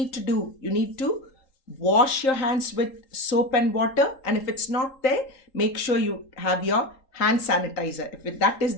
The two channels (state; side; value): late; right; 3.8 ms